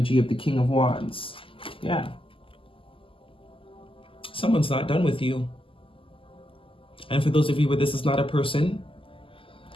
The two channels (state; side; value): late; right; 0.25 ms